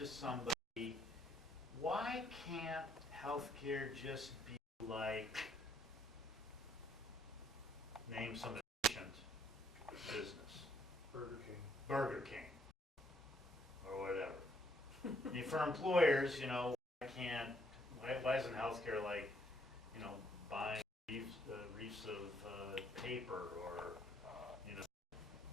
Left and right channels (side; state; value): both; normal; correlation 0.68